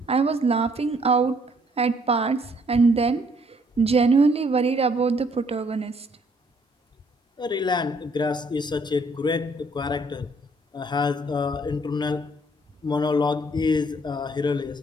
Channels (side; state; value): both; normal; correlation 0.65